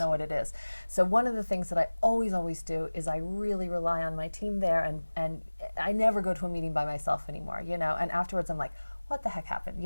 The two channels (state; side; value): inverted; both; correlation -1.00